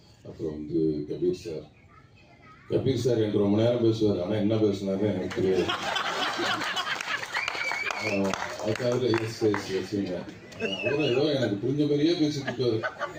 அப்புறம் கபீர் சார் என்று ரொம்ப நேரம் பேசுவார். ஆனால் என்ன பேசுனாருன்னு எனக்கு தெரியாது. அதுக்காக வச்சுங்க. அவரும் ஏதோ எனக்கு புரிஞ்ச மாதிரியே பேசிட்டு இருக்காரு.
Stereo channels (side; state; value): both; identical; correlation 1.00